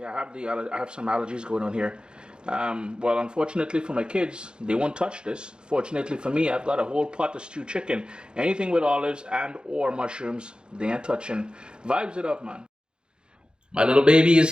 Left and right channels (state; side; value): late; left; 0.050 ms